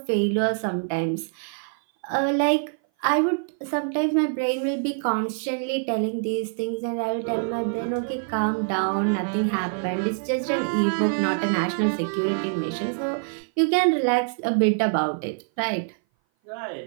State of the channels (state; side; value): silent; left; 58 dB below the other